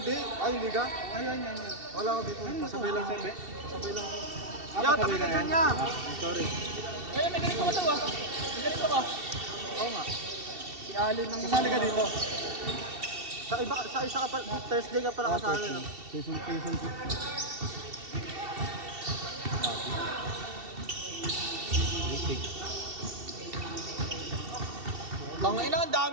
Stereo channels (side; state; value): left; late; 2.7 ms